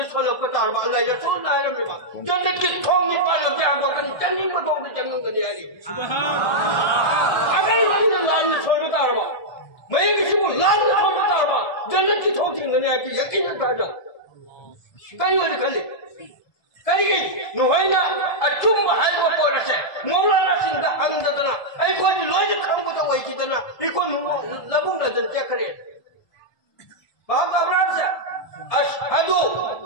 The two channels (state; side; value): late; right; 1.8 ms